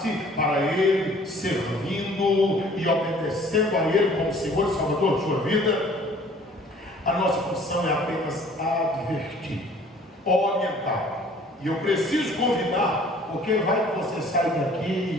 para Ele, servindo e obedecendo a Ele como Senhor e Salvador de sua vida? A nossa função é apenas advertir, orientar. E eu preciso convidar, porque vai que você sai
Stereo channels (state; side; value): normal; both; correlation 0.53